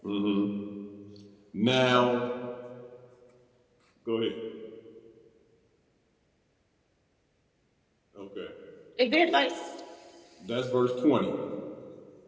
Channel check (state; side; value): identical; both; correlation 1.00